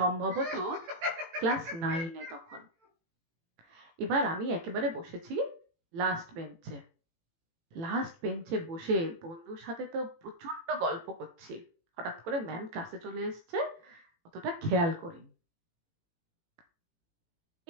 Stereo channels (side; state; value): left; late; 18 ms